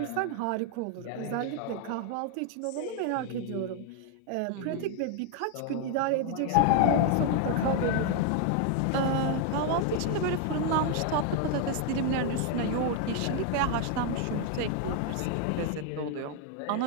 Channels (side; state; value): both; different; correlation 0.00